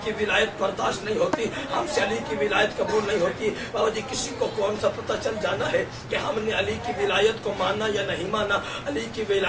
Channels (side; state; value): both; identical; correlation 1.00